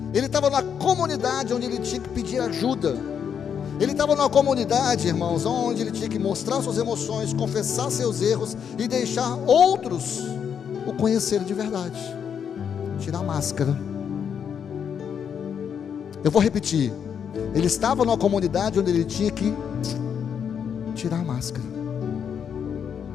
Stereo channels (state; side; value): quieter; right; 7.7 dB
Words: Ele estava numa comunidade onde ele tinha que pedir ajuda. Ele estava numa comunidade, irmãos, onde ele tinha que mostrar suas emoções, confessar seus erros e deixar outros o conhecerem de verdade. Tirar a máscara. Eu vou repetir. Ele estava numa comunidade onde ele tinha que tirar a máscara.